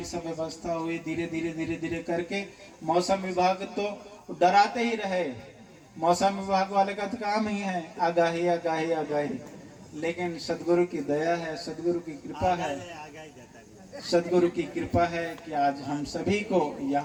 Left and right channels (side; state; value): both; identical; correlation 1.00